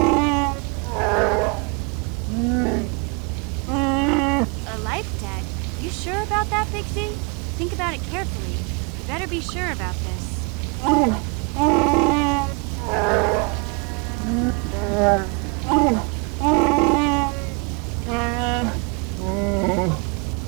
A life debt? You sure about that, Big Z? Think about it carefully. You better be sure about this.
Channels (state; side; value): quieter; left; 32.3 dB